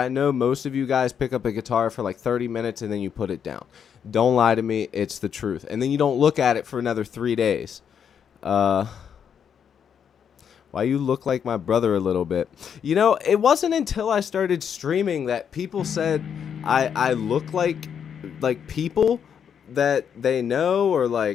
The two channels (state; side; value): quieter; right; 7.8 dB